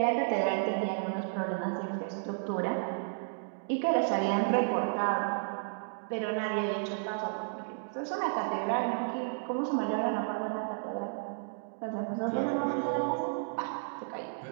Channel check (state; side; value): silent; left; digital silence